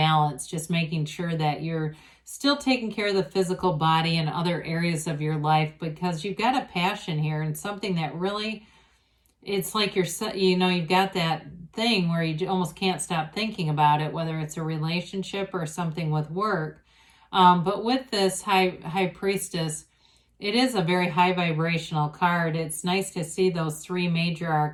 just making sure that you're still taking care of the physical body and other areas of your life, because you've got a passion here and something that really, it's like you've got that thing where you almost can't stop thinking about it, whether it's a relationship or something with work. But with this High Priestess, it is a very high vibrational card. It's nice to see those three major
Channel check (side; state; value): both; identical; correlation 1.00